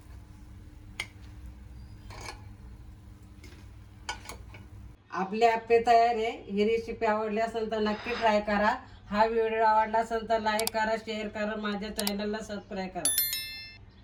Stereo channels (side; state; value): both; identical; correlation 1.00